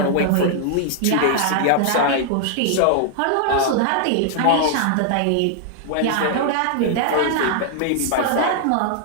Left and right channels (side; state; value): both; different; correlation 0.00